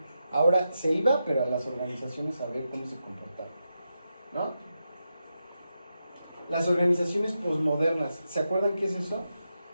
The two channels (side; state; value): both; inverted; correlation -0.87